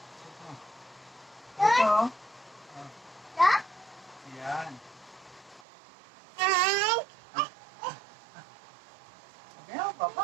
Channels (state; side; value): drops out; left; at 5.6 s